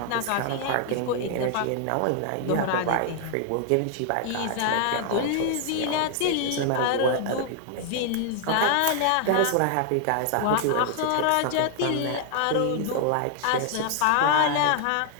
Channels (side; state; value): both; different; correlation 0.00